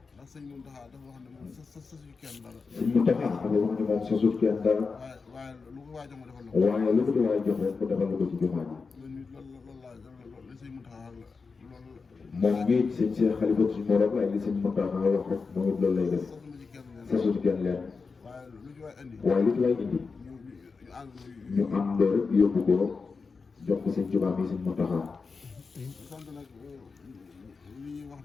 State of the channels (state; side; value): quieter; right; 4.7 dB